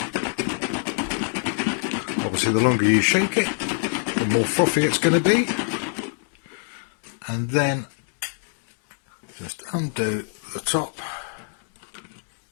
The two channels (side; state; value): right; silent; digital silence